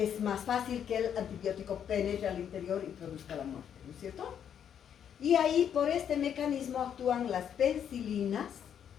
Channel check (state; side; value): quieter; right; 8.7 dB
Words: más fácil que el antibiótico penetre al interior y produzca la muerte, ¿no es cierto? Y ahí, por este mecanismo, actúan las penicilinas,